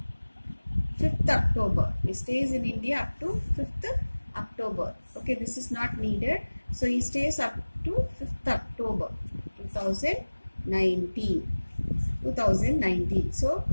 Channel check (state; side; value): inverted; both; correlation -1.00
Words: 5th October. He stays in India up to 5th October. Okay, this is not needed. So he stays up to 5th October 2019. So